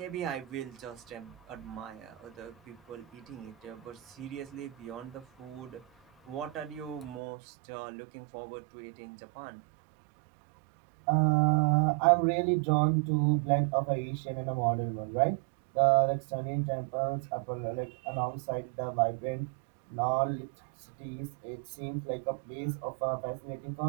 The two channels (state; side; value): drops out; left; at 7.2 s